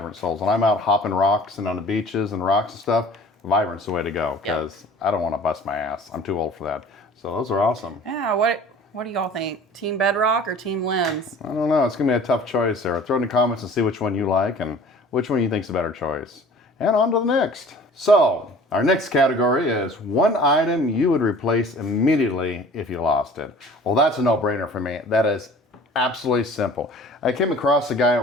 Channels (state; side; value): normal; both; correlation 0.46